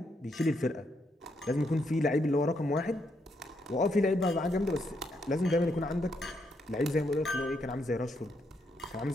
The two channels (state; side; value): normal; both; correlation 0.78